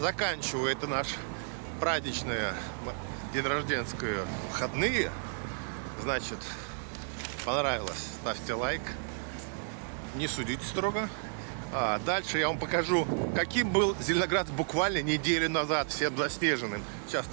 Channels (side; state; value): left; silent; 56 dB below the other